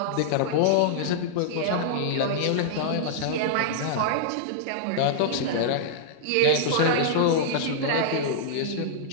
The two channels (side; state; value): both; different; correlation -0.02